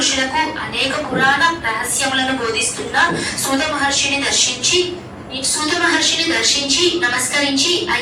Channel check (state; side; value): identical; both; correlation 1.00